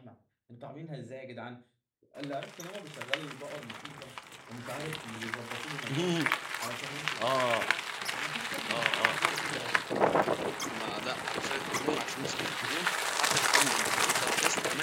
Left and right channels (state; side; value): identical; both; correlation 1.00